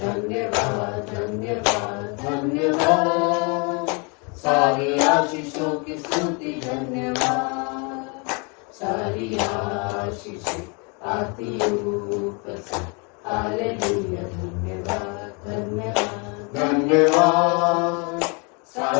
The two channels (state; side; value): quieter; right; 33.3 dB